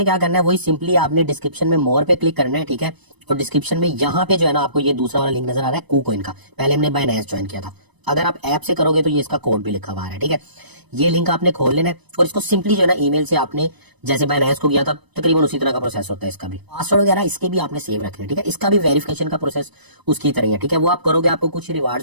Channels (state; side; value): late; left; 1.0 ms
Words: क्या करना है, वही सिंपली आपने डिस्क्रिप्शन में मोर पे क्लिक करना है, ठीक है। और डिस्क्रिप्शन में यहाँ पे जो है ना आपको ये दूसरा वाला लिंक नजर आ रहा है KuCoin का, पहले हमने बाइनेंस ज्वाइन किया था। अगर आप ऐप से करोगे तो ये इसका कोड भी लिखा हुआ है, ठीक है। ये लिंक आपने खोल लेना है और इसको सिंपली जो है ना ईमेल से आपने जैसे बाइनेंस को किया था तकरीबन उसी तरह का प्रोसेस होता है। इसका भी पासवर्ड वगैरह इसके भी आपने सेव रखने, ठीक है। इसका भी वेरिफिकेशन का प्रोसेस उसकी तरह है, ठीक है। वो आप करोगे आपको कुछ